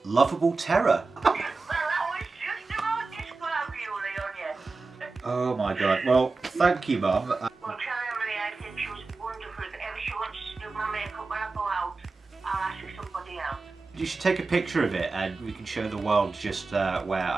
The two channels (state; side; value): quieter; left; 3.9 dB